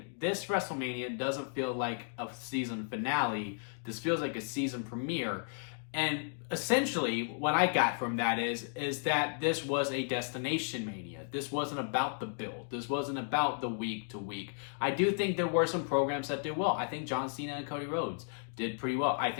this WrestleMania doesn't feel like a season finale. This feels like a season premiere. And essentially, what I got from that is that this was a destination mania. This wasn't about the build. This wasn't about the week to week. I do think there were some programs that did well. I think John Cena and Cody Rhodes did pretty well. I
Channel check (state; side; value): silent; right; 55 dB below the other